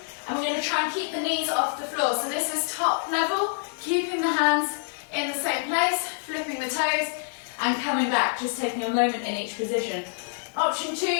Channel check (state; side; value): silent; right; digital silence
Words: And we're going to try and keep the knees off the floor. So this is top level. Keeping the hands in the same place. Flipping the toes. And coming back, just taking a moment in each position. Option 2,